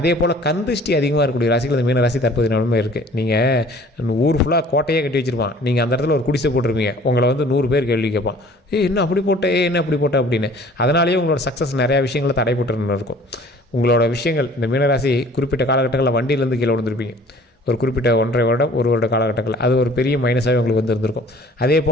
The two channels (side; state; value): both; normal; correlation 0.51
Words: போல் கந்திஷ்டி அதிகமாக இருக்கக்கூடிய ராசிகள் இந்த மீன ராசி தற்போது நிலமை இருக்குது. நீங்கள் ஊர் ஃபுல்லாக கோட்டையே கட்டி வச்சுருப்பான், நீங்கள் அந்த இடத்துல ஒரு குடிசை போட்டிருப்பீங்க, உங்களை வந்து 100 பேர் கேள்வி கேட்பான், என்ன அப்படி போட்ட, என்ன அப்படி போட்ட அப்படின்னு. அதனாலேயே உங்களோட சக்ஸஸ் நிறையா விஷயங்களை தடைப்பட்டு இருக்கும். உங்களோட விஷயங்கள் இந்த மீனராசி குறிப்பிட்ட காலகட்டங்களில் வண்டியிலேருந்து கீழே விழுந்திருப்பீங்க. ஒரு குறிப்பிட்ட 1.5 வருடம் 1 வருட காலகட்டங்கள் அது ஒரு பெரிய மைனஸாகவே உங்களுக்கு வந்து இருந்திருக்கும். அதே